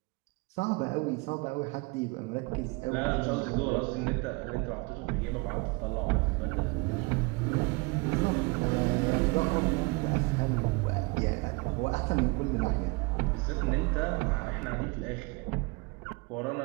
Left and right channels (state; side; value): quieter; left; 27.5 dB